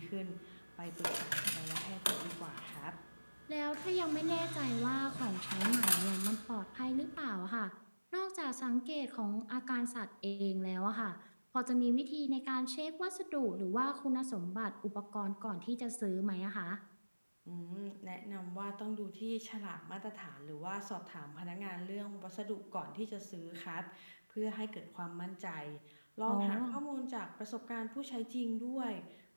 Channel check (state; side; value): inverted; both; correlation -1.00